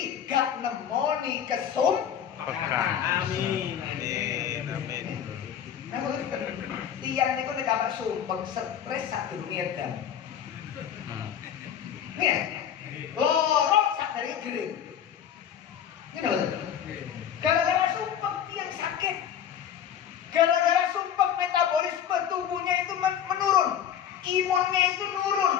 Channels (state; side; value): quieter; right; 9.2 dB